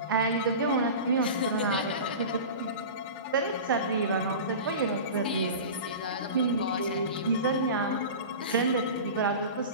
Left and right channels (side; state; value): both; inverted; correlation -0.32